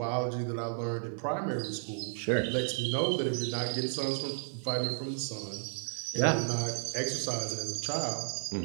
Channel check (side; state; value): left; silent; 56 dB below the other